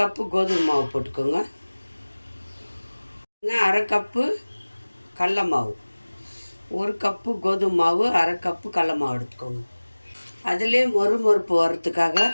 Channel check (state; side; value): inverted; both; correlation -1.00